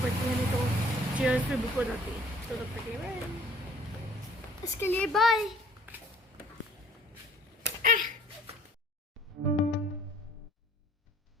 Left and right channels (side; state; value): both; normal; correlation 0.55